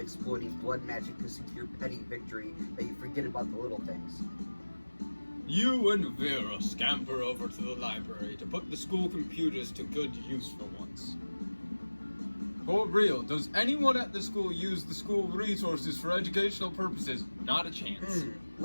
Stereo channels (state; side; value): inverted; both; correlation -1.00